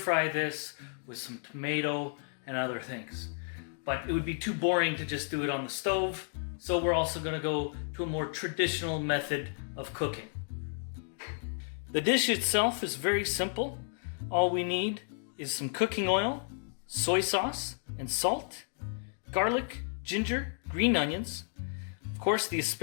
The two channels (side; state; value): right; silent; 56 dB below the other